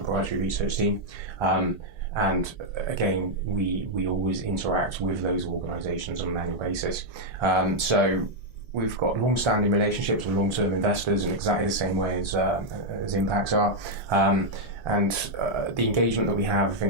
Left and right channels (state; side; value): normal; both; correlation -0.02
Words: research team. And again, we always interact with those organisations on an annual basis. So we've got long-standing relationships with long-term investors in exactly the same way as Impax are. And the engagement that we have, I